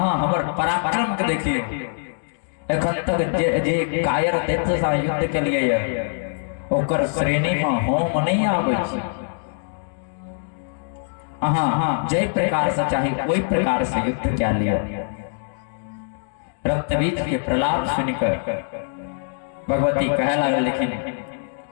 हमर पराक्रम के देखियो। एखन तक जे कायर दैत्य से युद्ध के लिए ओकर श्रेणी में हम नहीं आबै छी। अहाँ जय प्रकार से चाहे कोई प्रकार से युद्ध क्या लिया। रक्तबीज के प्रलाप सुनकर भगवती कह लगे लेकिन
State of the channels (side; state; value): right; silent; digital silence